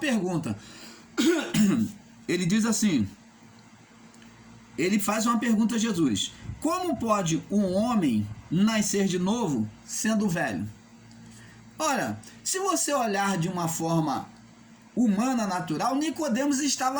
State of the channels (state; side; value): identical; both; correlation 1.00